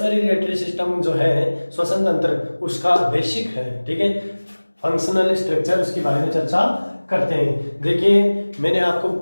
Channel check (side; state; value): both; inverted; correlation -1.00